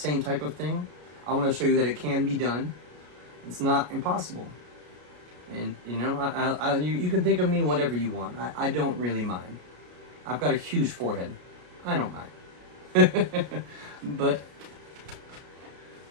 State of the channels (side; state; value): left; late; 33 ms